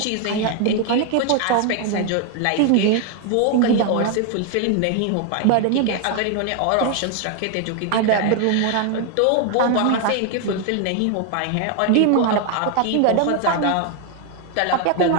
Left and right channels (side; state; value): both; different; correlation 0.00